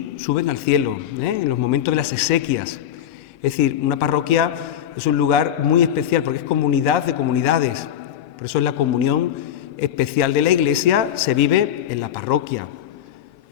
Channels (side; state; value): right; quieter; 10.3 dB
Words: suben al cielo, en los momentos de las exequias. Es decir, una parroquia es un lugar muy especial porque es comunidad de comunidades. Por eso es la comunión especial de la Iglesia, se vive en la parroquia.